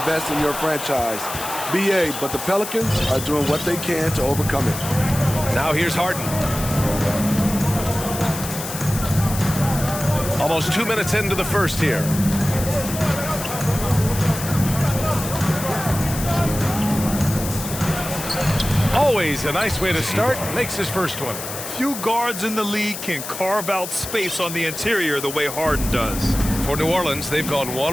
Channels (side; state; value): left; noise; hiss, 8 dB below the sound